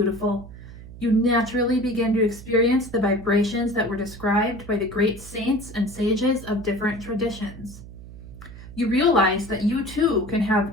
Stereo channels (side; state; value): right; noise; hum, 15 dB below the sound